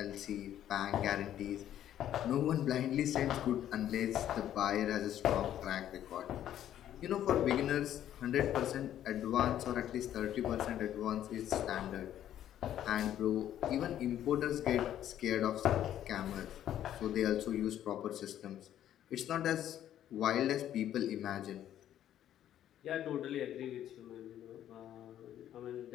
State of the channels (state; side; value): quieter; right; 11.3 dB